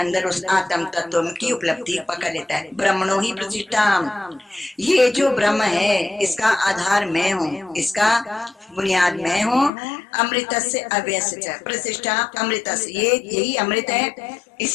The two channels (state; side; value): drops out; right; at 9.7 s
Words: उस आत्म तत्व की उपलब्धि पकड़ लेता है। ब्रह्मणो ही प्रतिष्ठा, ये जो ब्रह्म है इसका आधार मैं हूँ, इसका बुनियाद मैं हूँ। अमृत से अव्यय प्रतिष्ठा, अमृत ये यही अमृत है,